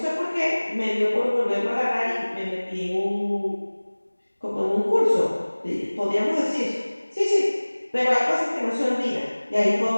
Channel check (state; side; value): inverted; both; correlation -1.00